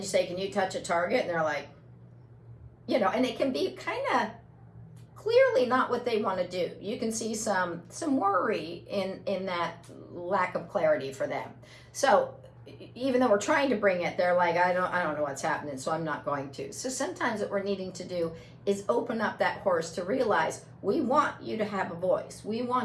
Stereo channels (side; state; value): both; identical; correlation 1.00